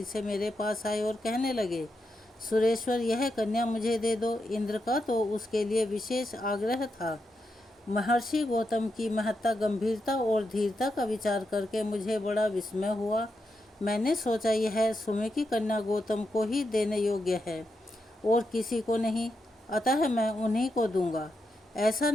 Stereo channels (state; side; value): normal; both; correlation 0.84